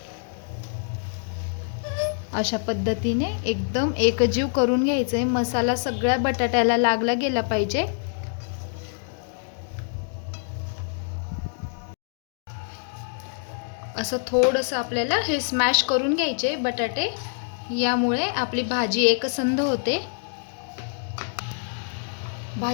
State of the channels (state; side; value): silent; right; digital silence